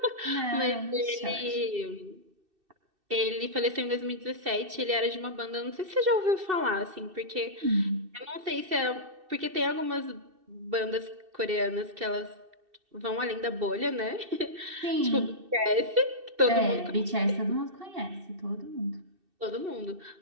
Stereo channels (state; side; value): late; left; 2.6 ms